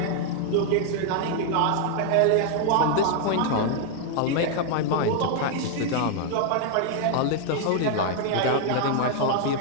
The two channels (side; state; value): both; different; correlation 0.00